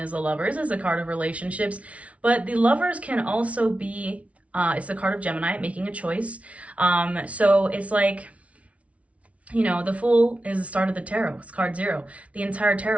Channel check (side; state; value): left; late; 0.064 ms